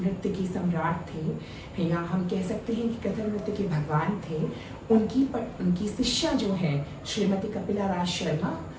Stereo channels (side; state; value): both; identical; correlation 1.00